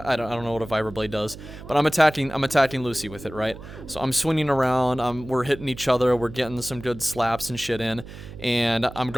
I don't know what a vibroblade does, but I'm attacking Lucy with it, right? So I'm swinging around. We're hitting each other. We're getting some good slaps and shit in, and I'm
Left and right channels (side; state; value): right; noise; hum, 14 dB below the sound